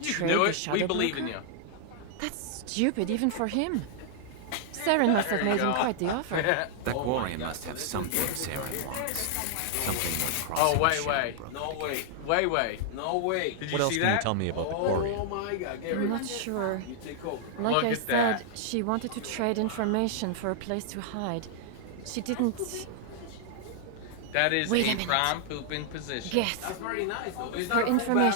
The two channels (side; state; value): both; different; correlation -0.01